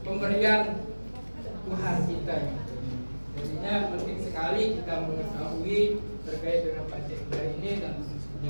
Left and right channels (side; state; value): both; inverted; correlation -1.00